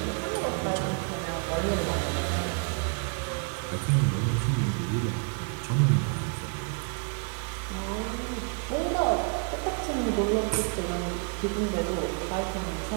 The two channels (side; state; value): left; quieter; 39.4 dB